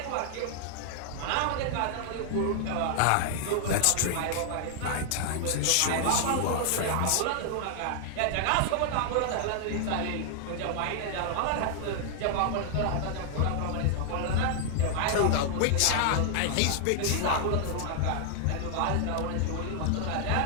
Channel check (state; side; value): different; both; correlation 0.00